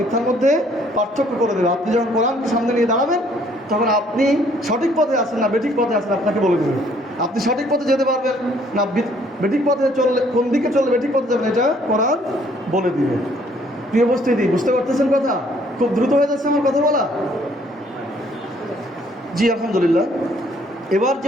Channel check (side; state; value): both; normal; correlation 0.62